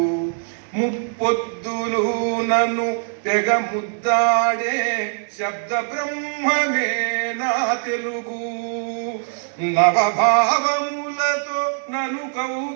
ముప్పొద్దులు నన్ను తెగ ముద్దాడే శబ్ద బ్రహ్మమే నా తెలుగు నవభావములతో నన్ను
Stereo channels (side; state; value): left; silent; digital silence